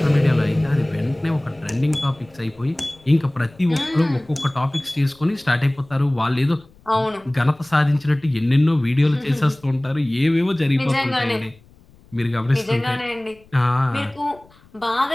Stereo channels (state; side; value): noise; left; rumble, 28 dB below the sound